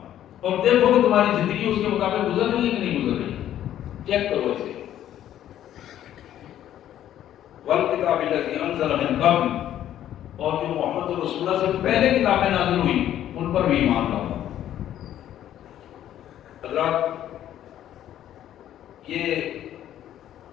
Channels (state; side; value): quieter; right; 11.6 dB